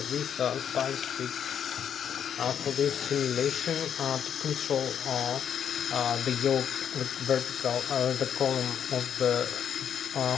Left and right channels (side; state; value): right; quieter; 8.6 dB